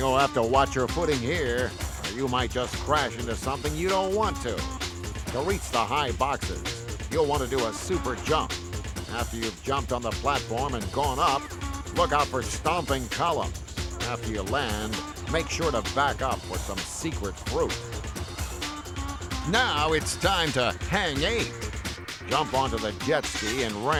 have to watch your footing here, or you might just crash into something you don't want to. To reach the high boxes, you'll want to do a super jump. After you've jumped on the platform and gone up, look out for stomping columns. After you land, make sure to back up for some secret fruit. Now it's time to hang 8. Jump onto the jet ski and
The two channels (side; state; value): both; identical; correlation 1.00